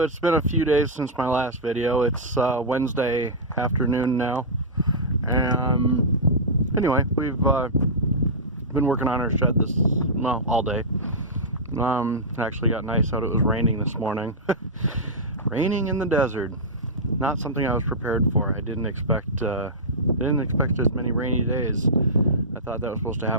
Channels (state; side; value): normal; both; correlation -0.11